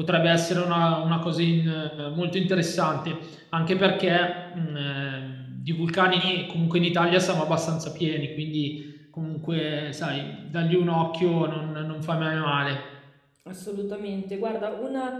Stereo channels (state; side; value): identical; both; correlation 1.00